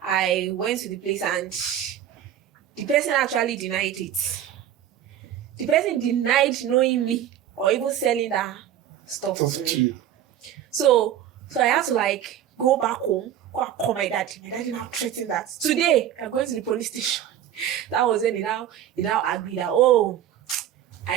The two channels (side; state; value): left; quieter; 10.7 dB